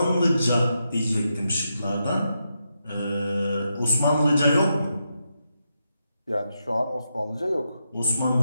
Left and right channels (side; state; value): both; inverted; correlation -0.84